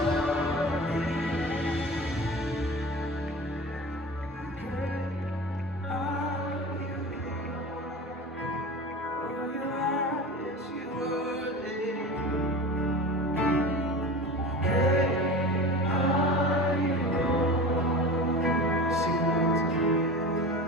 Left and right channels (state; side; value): normal; both; correlation 0.33